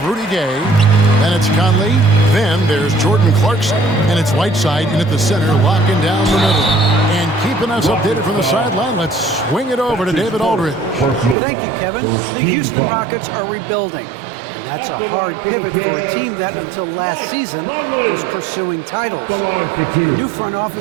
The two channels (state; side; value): drops out; left; at 11.4 s